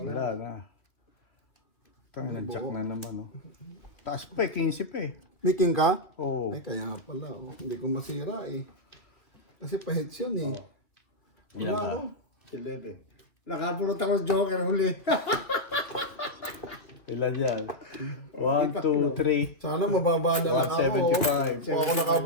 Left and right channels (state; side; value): late; right; 2.4 ms